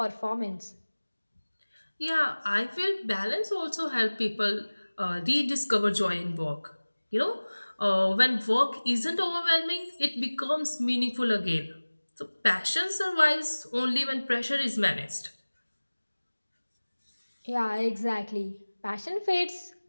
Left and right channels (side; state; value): both; inverted; correlation -1.00